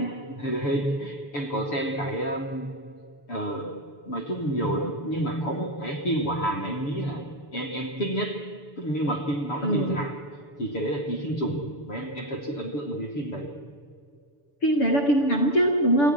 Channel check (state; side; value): late; right; 6.9 ms